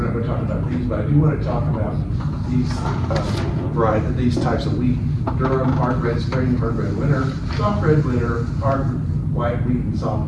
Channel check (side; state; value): both; identical; correlation 1.00